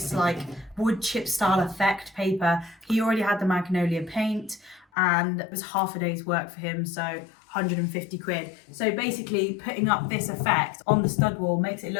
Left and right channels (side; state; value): right; drops out; at 4.9 s